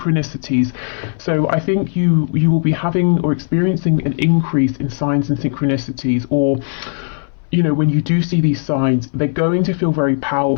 So I think you will be having or experiencing an increase in signs and synchronicities, or you know, when you do see these signs, they're going to feel very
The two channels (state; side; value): silent; right; 63 dB below the other